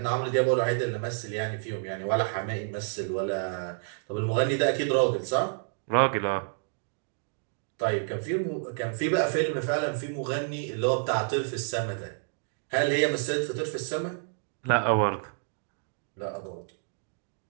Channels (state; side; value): silent; left; digital silence